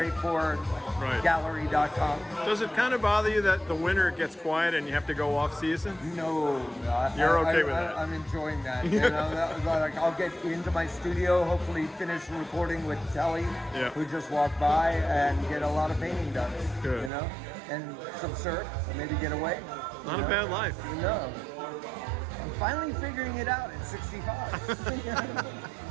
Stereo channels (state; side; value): drops out; left; at 17.1 s